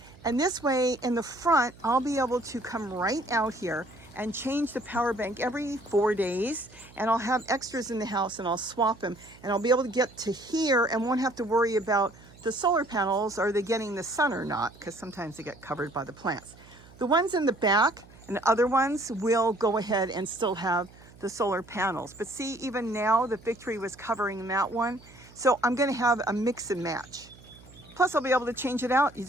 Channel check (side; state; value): right; noise; hum, 23 dB below the sound